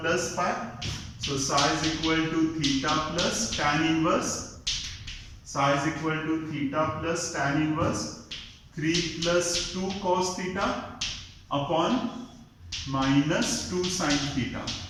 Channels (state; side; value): identical; both; correlation 1.00